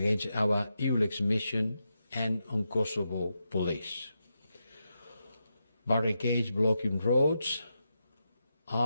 our EULEX mission and on Kosovo police. Barricades blocking roads,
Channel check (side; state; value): both; inverted; correlation -0.87